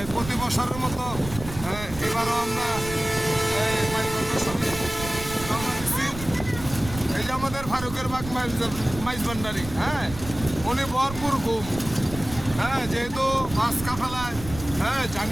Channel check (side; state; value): right; noise; rumble, 11 dB below the sound